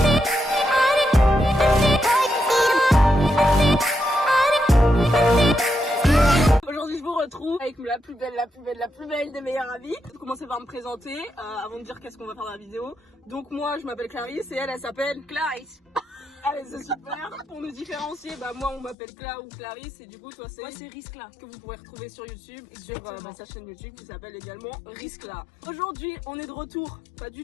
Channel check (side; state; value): right; drops out; at 18.9 s